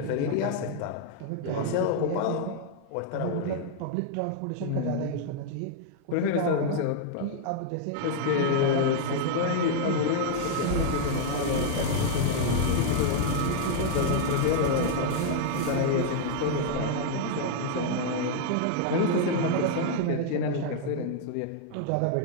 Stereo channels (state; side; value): different; both; correlation 0.00